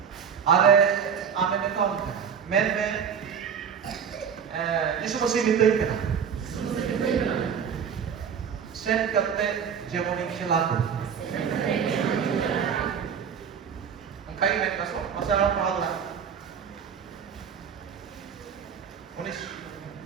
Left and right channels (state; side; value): quieter; left; 7.3 dB